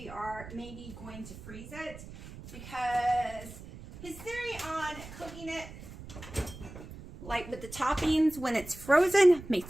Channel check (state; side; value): noise; right; rumble, 14 dB below the sound